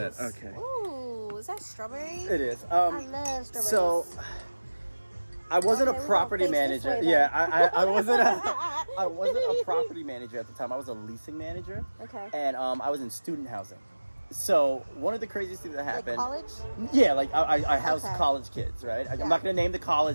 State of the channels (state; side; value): inverted; both; correlation -1.00